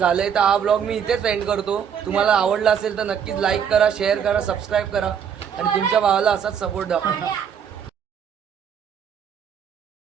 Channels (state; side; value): quieter; left; 7.9 dB